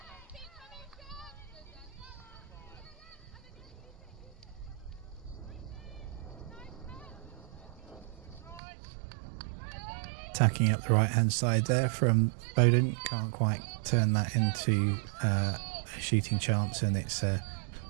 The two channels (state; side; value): drops out; left; at 8.6 s